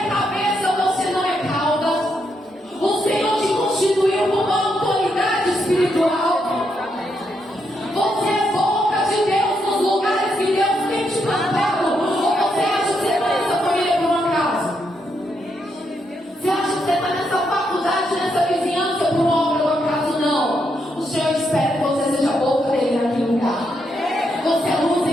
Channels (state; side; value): normal; both; correlation 0.79